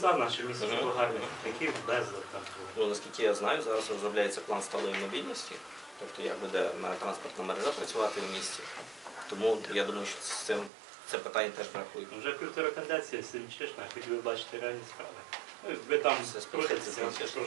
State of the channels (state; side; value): drops out; left; at 10.7 s